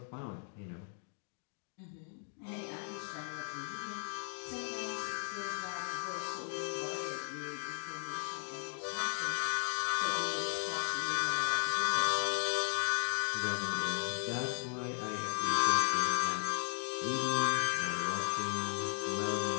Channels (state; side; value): silent; right; 54 dB below the other